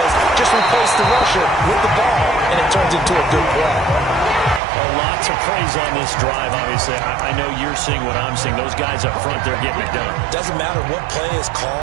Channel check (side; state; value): left; drops out; at 4.6 s